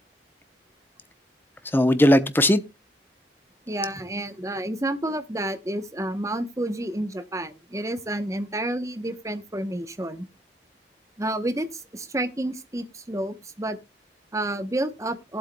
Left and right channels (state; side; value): normal; both; correlation 0.72